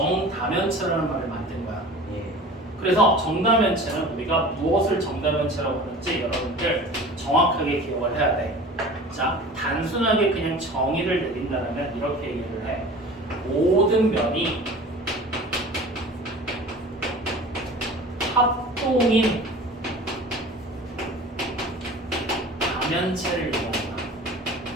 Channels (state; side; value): normal; both; correlation 0.40